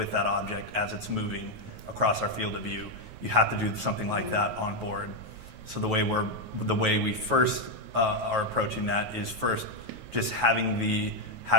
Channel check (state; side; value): late; left; 9.3 ms